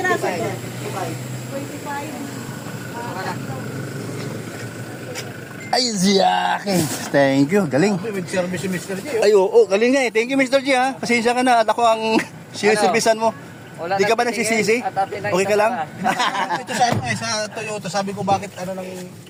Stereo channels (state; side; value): identical; both; correlation 1.00